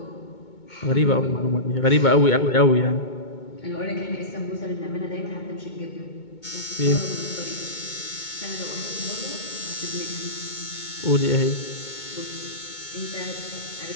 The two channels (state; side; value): late; right; 2.2 ms